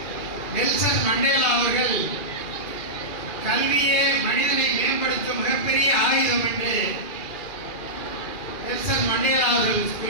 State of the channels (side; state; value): right; late; 2.4 ms